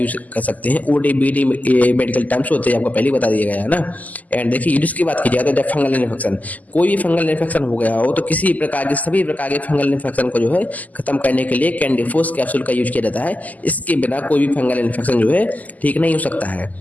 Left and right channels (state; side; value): late; right; 0.078 ms